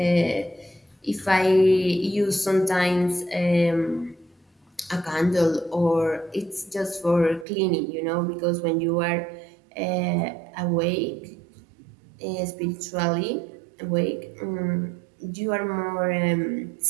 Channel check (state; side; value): drops out; left; at 7.5 s